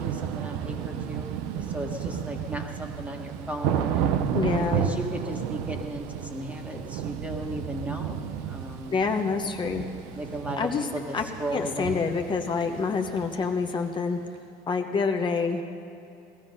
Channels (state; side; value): normal; both; correlation 0.46